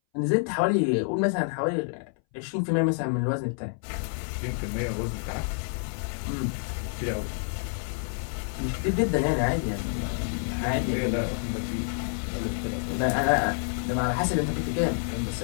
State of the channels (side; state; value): right; silent; 59 dB below the other